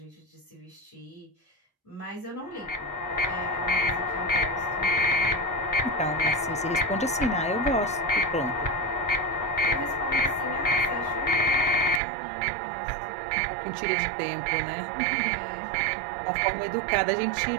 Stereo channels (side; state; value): left; drops out; at 12.0 s